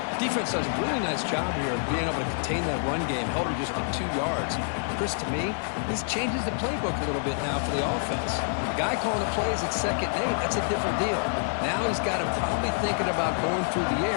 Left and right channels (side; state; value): right; silent; digital silence